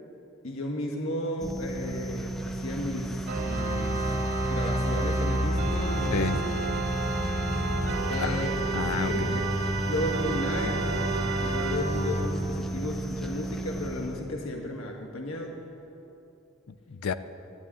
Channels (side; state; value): both; normal; correlation 0.57